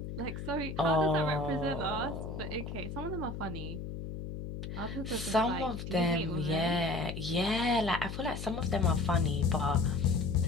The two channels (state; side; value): noise; left; hum, 7 dB below the sound